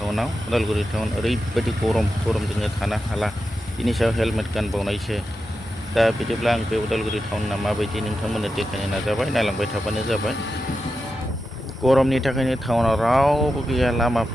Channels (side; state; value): both; normal; correlation 0.90